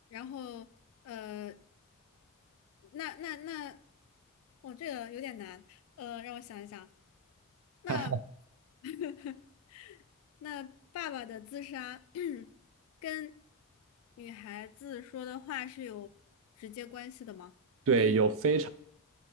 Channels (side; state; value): both; normal; correlation -0.10